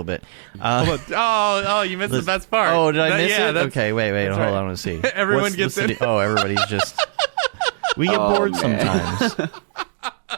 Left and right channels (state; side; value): silent; left; digital silence